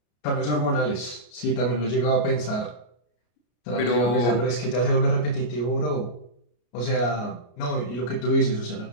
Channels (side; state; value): right; late; 33 ms